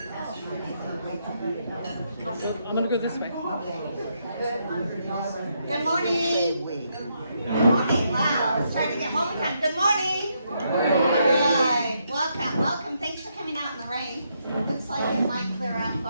going to go this way. Good morning. Good morning. Wow, it's trying to get home time. Good morning. All right. Welcome. Thanks for coming out in the rain. Looks like it might clear out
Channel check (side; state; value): both; inverted; correlation -0.78